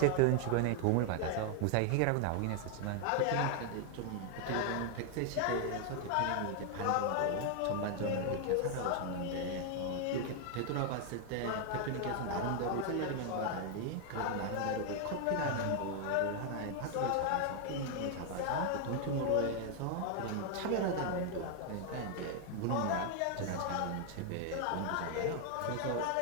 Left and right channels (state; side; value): different; both; correlation 0.00